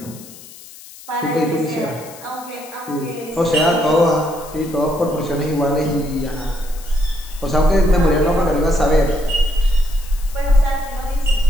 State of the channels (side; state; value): left; noise; hiss, 18 dB below the sound